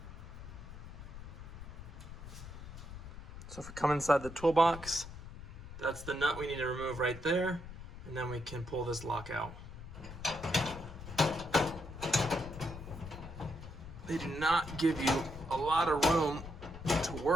So if we come inside the toolbox, that's the nut we need to remove right there, and then we can pull this lock out. They do not give you a lot of room to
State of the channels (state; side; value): noise; left; rumble, 12 dB below the sound